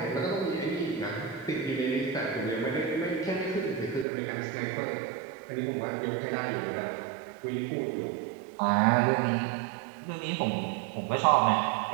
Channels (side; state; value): left; drops out; at 4.0 s